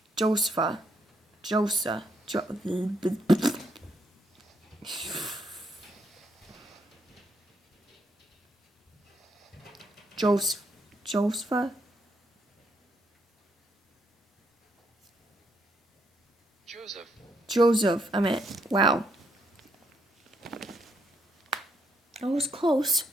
Joseph, I meant, wow. I was close.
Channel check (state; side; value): normal; both; correlation 0.74